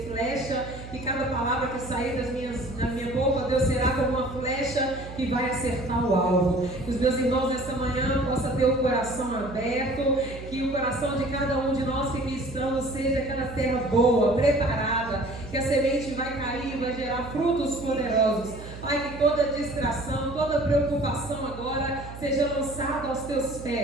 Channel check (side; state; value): right; noise; hum, 13 dB below the sound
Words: flecha, e cada palavra que sair da minha boca, Deus, será como uma flecha que vai acertar o alvo. Que os meus irmãos nessa manhã possam ter o coração aberto, que o coração de cada um de nós que aqui estamos seja aquela terra boa, preparada, que a semente vai cair, vai gerar frutos poderosos. Pai, que toda distração, toda preocupação agora seja lançada aos teus